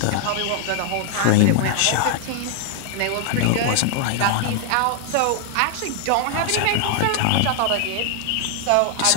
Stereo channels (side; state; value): both; different; correlation 0.00